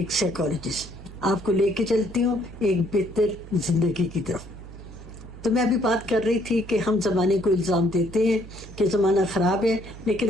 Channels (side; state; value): right; noise; hum, 15 dB below the sound